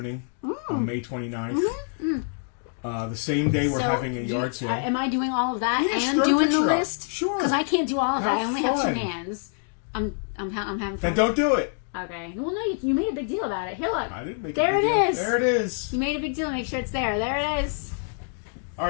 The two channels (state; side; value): silent; right; 60 dB below the other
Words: on May 29th. Mm-hmm. The same day we're having a yard sale. Am I doing all of that Yes, and throw a doing the picture up. list? Sure. Because I can't do all of that. I only have fun. 2 hands. I'm having fun. Then don't do it. Okay. Well, no, you made a big deal about it. Here, look. I didn't make there a big it deal. is. There it is. You made a big deal. Make sure it's there. There it is. All